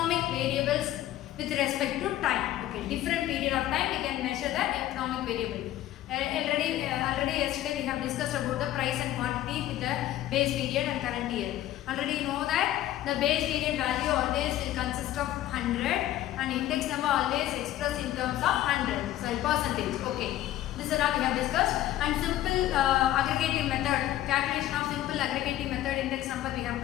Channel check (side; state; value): right; quieter; 13.7 dB